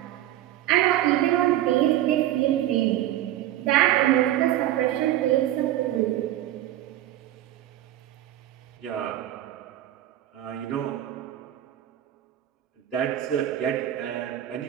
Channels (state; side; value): quieter; left; 13.1 dB